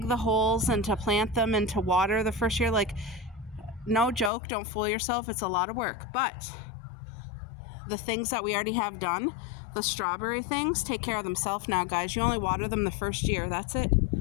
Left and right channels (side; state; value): right; drops out; at 4.3 s